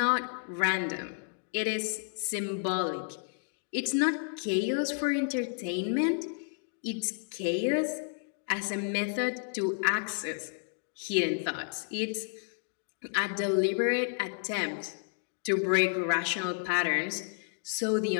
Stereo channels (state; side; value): silent; right; 57 dB below the other